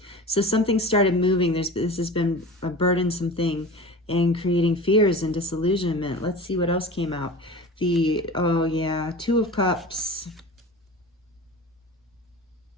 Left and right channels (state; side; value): normal; both; correlation 0.34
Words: So something started moving. This has been a burdensome thing and creating fears and disillusionment. Let's see what else came out. Oh yeah, 2 of Cups.